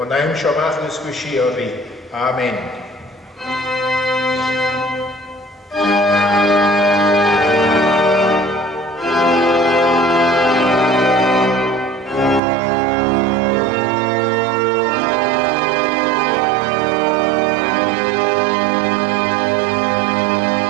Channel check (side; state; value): left; drops out; at 12.4 s